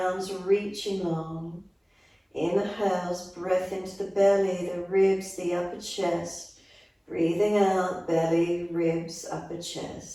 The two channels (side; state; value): both; identical; correlation 1.00